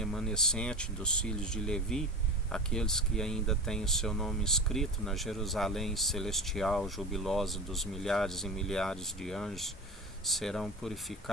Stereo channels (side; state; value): both; normal; correlation 0.30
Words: dos filhos de Levi, aqueles que ainda têm o seu nome escrito na Jerusalém celestial, jubilosa dos milhares e milhares de anjos, serão